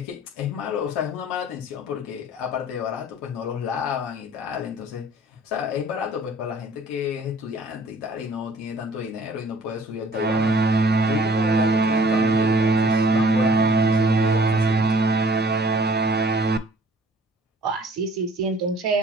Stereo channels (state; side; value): normal; both; correlation 0.53